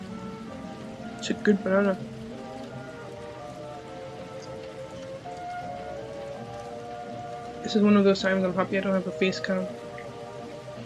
It's a good banana. This is one of those times I'm happy I don't have a face cam.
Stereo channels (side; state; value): both; identical; correlation 1.00